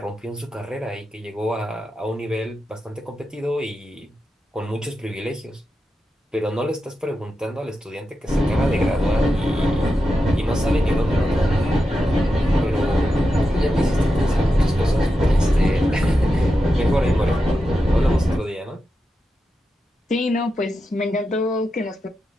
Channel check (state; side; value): normal; both; correlation 0.89